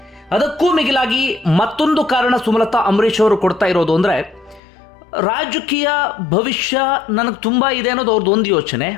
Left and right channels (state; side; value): drops out; right; at 4.6 s